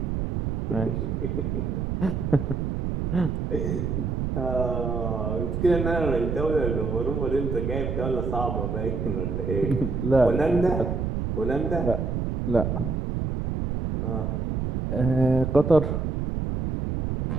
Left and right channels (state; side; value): noise; right; rumble, 1 dB below the sound